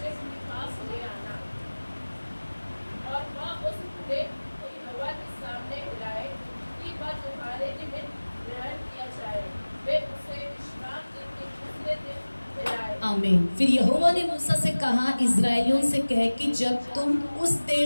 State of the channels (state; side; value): inverted; both; correlation -1.00